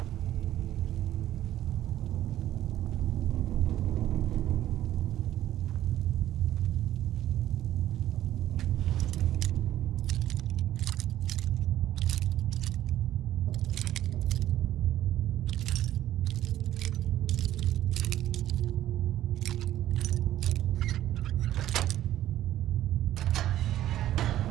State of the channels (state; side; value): quieter; left; 13.0 dB